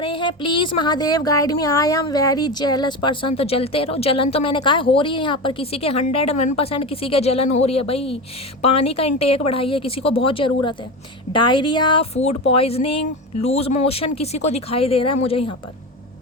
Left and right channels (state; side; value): normal; both; correlation 0.22